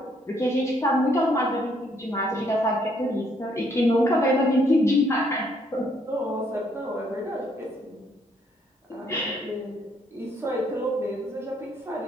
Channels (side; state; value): both; normal; correlation 0.69